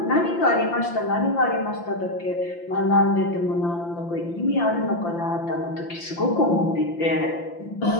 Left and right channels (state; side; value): late; right; 5.8 ms